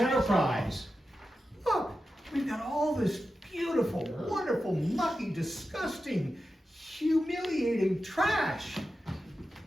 Look, we've got all this beautiful, wonderful, mucky, disgusting, humiliating trash.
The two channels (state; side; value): normal; both; correlation 0.91